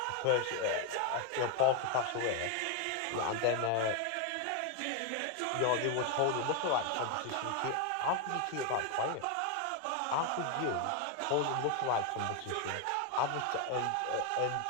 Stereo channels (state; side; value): different; both; correlation 0.01